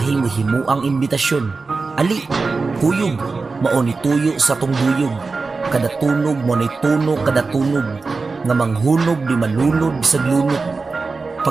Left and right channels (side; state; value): left; quieter; 4.1 dB